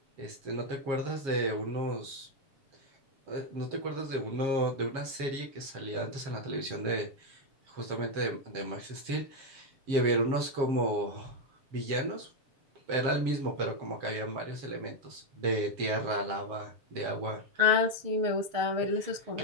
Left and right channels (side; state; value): left; late; 7.4 ms